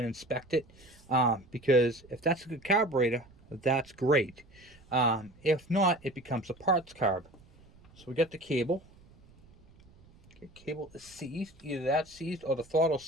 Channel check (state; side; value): noise; right; rumble, 26 dB below the sound